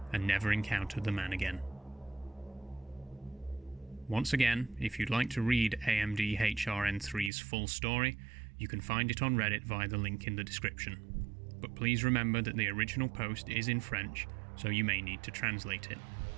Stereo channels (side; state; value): left; drops out; at 7.3 s